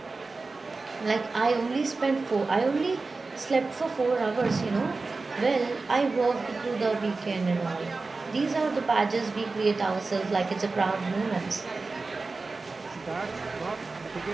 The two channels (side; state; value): left; quieter; 3.8 dB